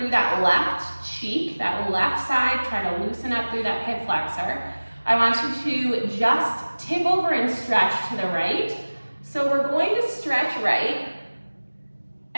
that left cheek, that left side, try to loosen up through that hip flexor. I want you to just tip over and stretch to the right. So we're going to stretch right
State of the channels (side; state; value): both; inverted; correlation -1.00